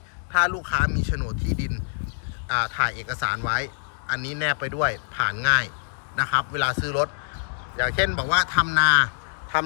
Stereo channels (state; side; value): silent; right; digital silence